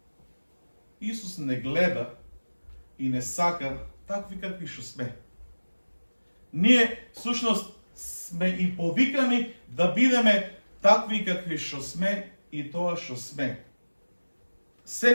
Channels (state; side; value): inverted; both; correlation -1.00